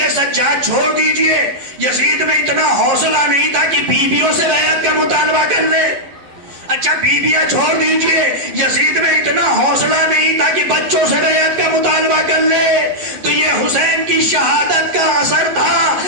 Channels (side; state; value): left; late; 11 ms